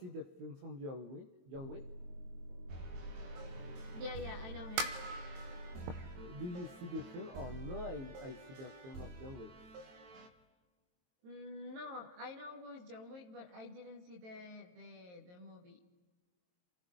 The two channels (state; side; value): late; left; 22 ms